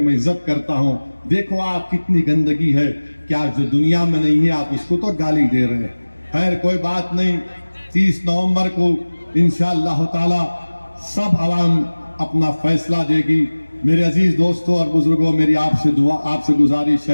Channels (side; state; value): both; inverted; correlation -1.00